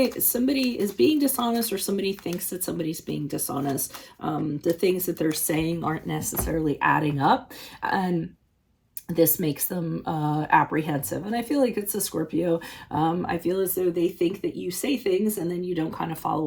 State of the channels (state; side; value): identical; both; correlation 1.00